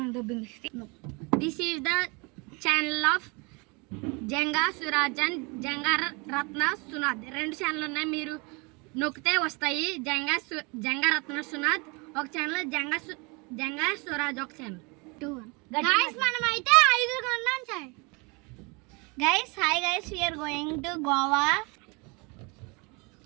This is the channel of Janga Swaraj and Jangaratna Sunad. రెండు ఛానల్ ఉన్నాయి, మీరు నొక్కితే వస్తాయి. జంగారత్న సునాద్ ఒక ఛానల్, జంగా స్వరాజ్ ఒక ఛానల్. Guys, మనం అయితే 5 కొన్నాం sir. Guys, hi guys, we are going to Goa.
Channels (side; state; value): left; quieter; 29.3 dB